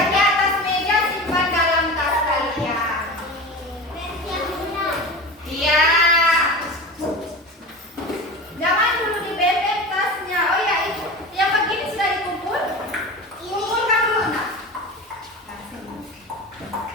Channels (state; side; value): normal; both; correlation 0.30